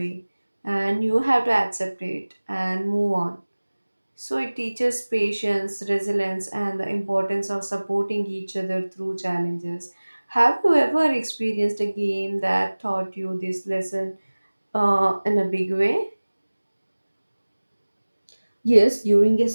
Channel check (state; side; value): inverted; both; correlation -1.00